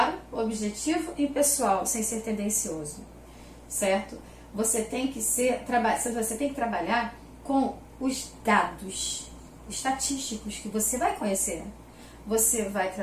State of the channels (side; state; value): both; identical; correlation 1.00